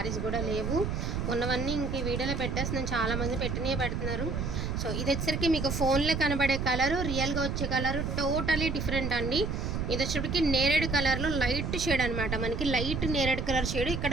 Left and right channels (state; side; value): noise; right; rumble, 2 dB below the sound